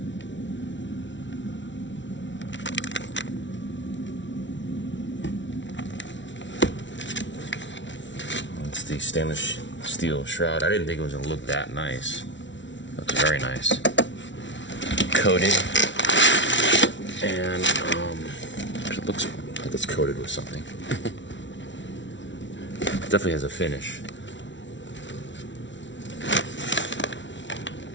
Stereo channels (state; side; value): late; right; 0.54 ms